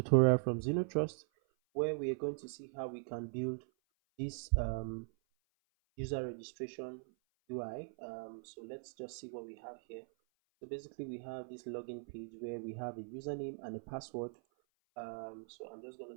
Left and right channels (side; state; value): left; silent; 51 dB below the other